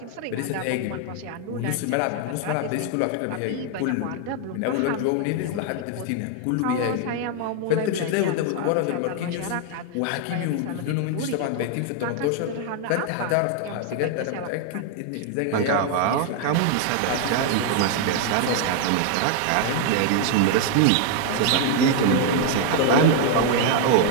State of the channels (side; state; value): both; different; correlation 0.00